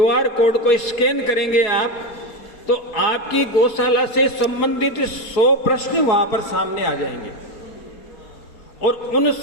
कोड को स्कैन करेंगे आप, तो आपकी गौशाला से संबंधित 100 प्रश्न वहां पर सामने आ जाएंगे, और उन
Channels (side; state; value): right; late; 4.2 ms